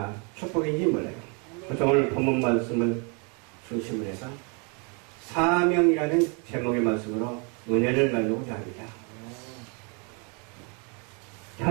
축복인지 몰라요. 그래서 오늘 본문 말씀을 중심으로 해서 사명이라는 제목의 말씀으로 은혜를 나누고자 합니다.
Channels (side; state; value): left; quieter; 34.8 dB